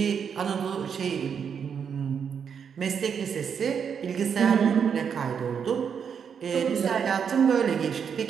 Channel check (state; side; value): quieter; left; 7.1 dB